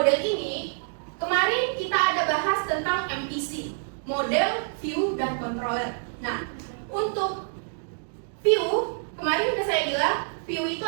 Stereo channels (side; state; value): left; silent; digital silence